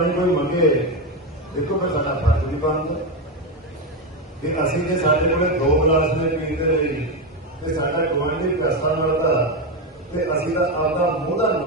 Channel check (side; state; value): both; normal; correlation 0.11